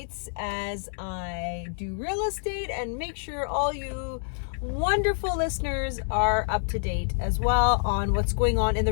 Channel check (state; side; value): silent; right; 60 dB below the other